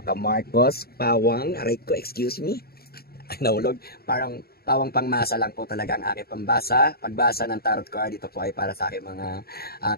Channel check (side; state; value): right; late; 0.45 ms